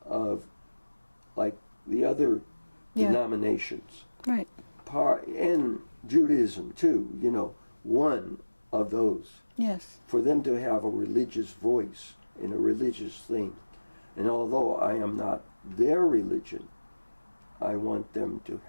of, like the other denominations. Right. And Judaism too, one of those. Yes. For them to have a religious voice in a religious thing. And although I am not their religion, I want them to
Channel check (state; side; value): inverted; both; correlation -1.00